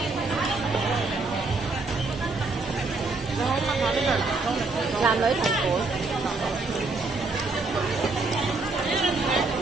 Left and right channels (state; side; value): quieter; left; 3.6 dB